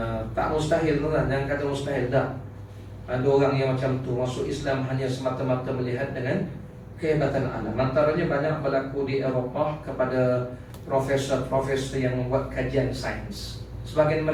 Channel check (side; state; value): both; identical; correlation 1.00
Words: Tak mustahil tuan-tuan, jangan kata mustahil, tak. Ada orang yang macam tu masuk Islam hanya semata-mata melihat dengan kehebatan alam. Antaranya banyak berlaku di Eropah kepada profesor-profesor yang membuat kajian sains. Sebagian